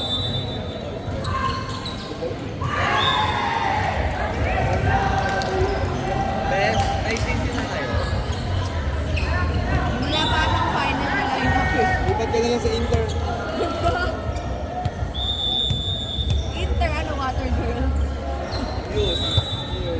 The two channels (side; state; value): both; identical; correlation 1.00